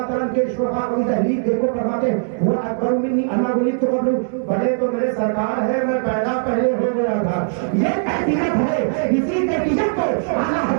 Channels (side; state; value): left; silent; digital silence